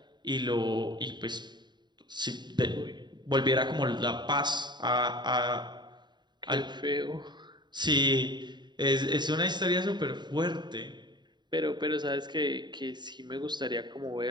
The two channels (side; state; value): left; late; 0.21 ms